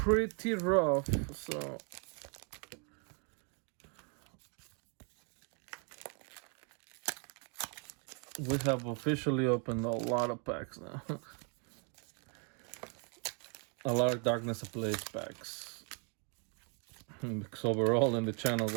rough, so we have officially opened a lot of packs now. A lot of Darkness Ablaze packs. Because overall in the channel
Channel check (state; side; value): quieter; left; 38.9 dB